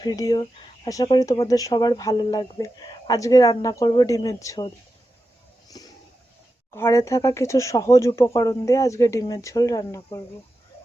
ভিডিও। আশা করি তোমাদের সবার ভালো লাগবে। আজকে রান্না করব ডিমের ঝোল। ঘরে থাকা কিছু সহজ উপকরণ দিয়ে আজকে ডিমের ঝোল রান্না করব।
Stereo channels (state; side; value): normal; both; correlation 0.90